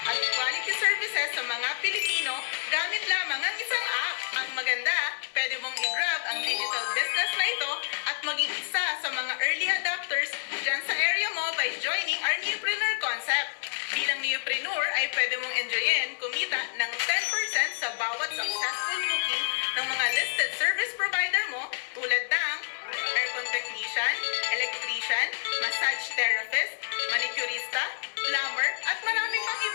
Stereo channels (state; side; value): silent; right; digital silence